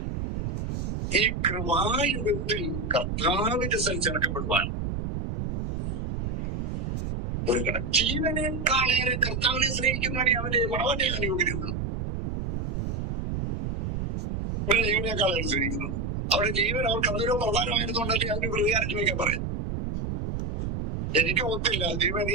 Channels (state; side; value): noise; right; rumble, 2 dB below the sound